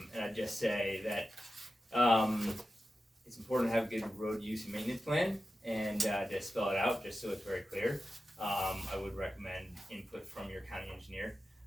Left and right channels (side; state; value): both; normal; correlation 0.92